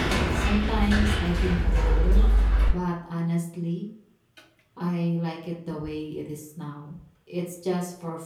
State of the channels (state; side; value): identical; both; correlation 1.00